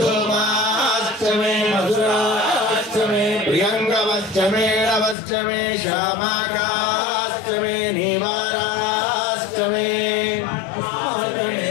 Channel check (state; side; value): drops out; right; at 5.2 s